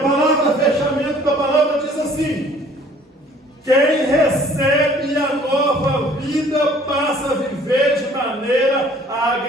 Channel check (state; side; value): normal; both; correlation 0.55